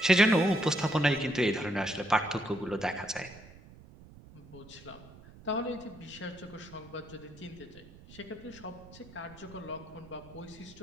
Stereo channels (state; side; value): noise; right; rumble, 20 dB below the sound